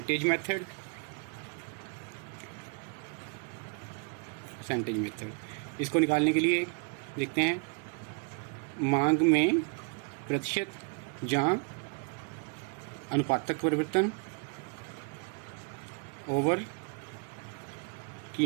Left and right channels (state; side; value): quieter; left; 38.8 dB